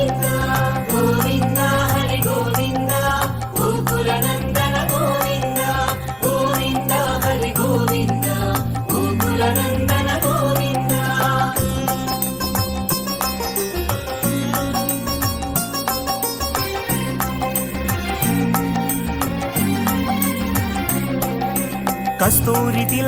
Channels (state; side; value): identical; both; correlation 1.00